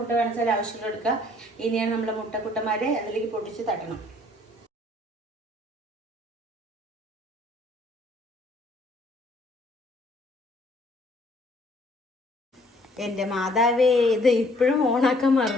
വേണമെച്ചാൽ ആവശ്യമുള്ള എടുക്കുക. ഇനിയാണ് നമ്മളെ മുട്ടക്കുട്ടന്മാരെ അതിലേക്ക് പൊട്ടിച്ച് തട്ടണം. എൻ്റെ മാതാവേ, ഇത് ഇപ്പോഴും ഓണാക്കാൻ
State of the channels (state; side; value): normal; both; correlation 0.61